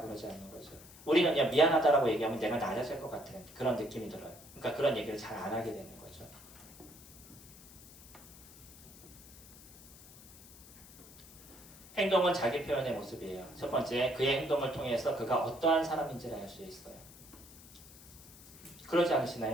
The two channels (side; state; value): left; noise; hiss, 20 dB below the sound